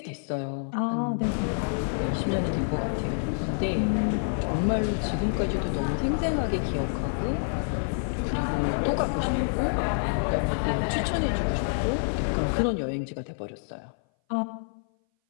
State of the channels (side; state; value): right; silent; 58 dB below the other